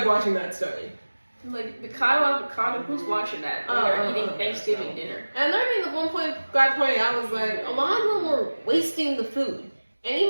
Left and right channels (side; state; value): both; inverted; correlation -1.00